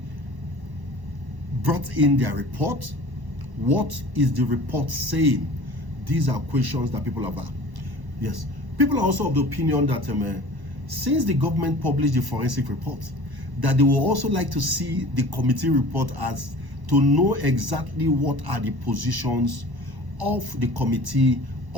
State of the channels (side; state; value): left; late; 1.0 ms